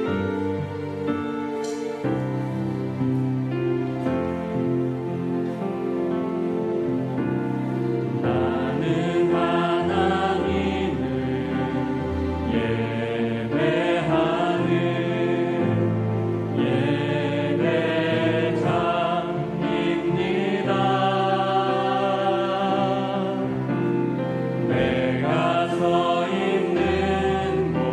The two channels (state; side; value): identical; both; correlation 1.00